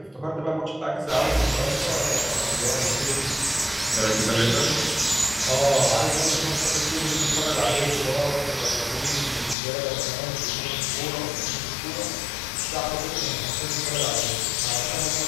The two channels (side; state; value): right; drops out; at 9.6 s